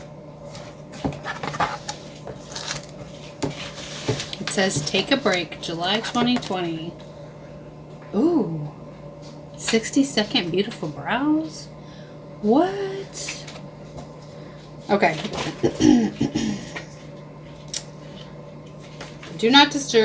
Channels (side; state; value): both; identical; correlation 1.00